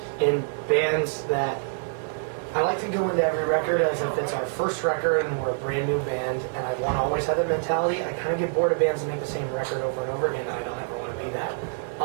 in bands that I like to go into every record as if it's our first record and we're a brand new band, and I want to always have that mentality. I kind of get bored of bands that make the same record over and over again, and I don't ever want to be that.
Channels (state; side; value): silent; left; 61 dB below the other